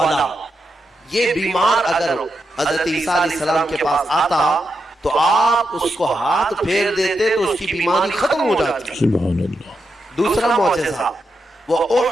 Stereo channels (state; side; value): normal; both; correlation 0.85